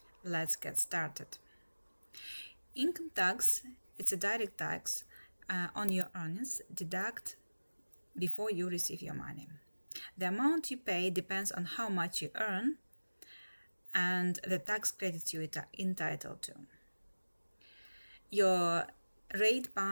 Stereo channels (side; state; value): both; inverted; correlation -1.00